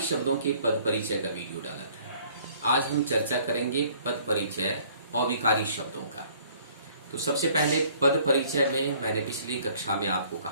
शब्दों के पद परिचय का वीडियो डाला था। आज हम चर्चा करेंगे पद परिचय अविकारी शब्दों का। तो सबसे पहले पद परिचय में मैंने पिछली कक्षा में आपको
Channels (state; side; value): inverted; both; correlation -0.57